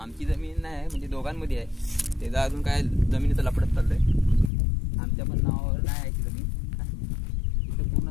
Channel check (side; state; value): right; drops out; at 4.5 s